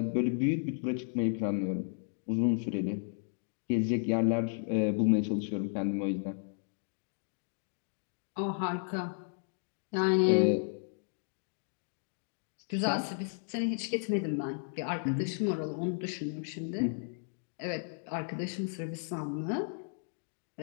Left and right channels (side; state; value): right; silent; digital silence